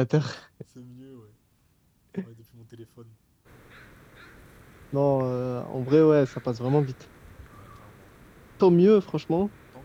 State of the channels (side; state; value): both; identical; correlation 1.00